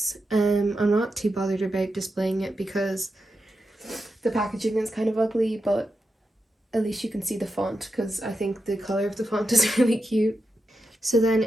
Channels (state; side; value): normal; both; correlation 0.88